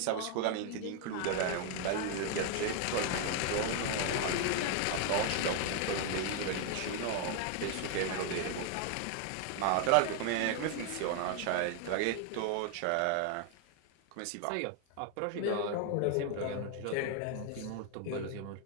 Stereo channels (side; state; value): both; different; correlation 0.00